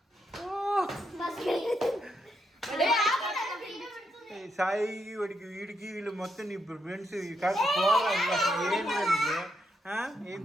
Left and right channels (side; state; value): both; normal; correlation 0.80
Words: సాయి వాడికి వీడికి వీళ్ళు మొత్తం ఇప్పుడు ఫ్రెండ్స్ కాదు పోరా. ఏం